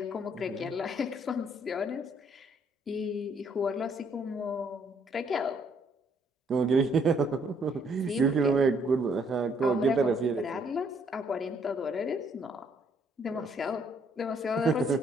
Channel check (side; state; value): both; normal; correlation 0.67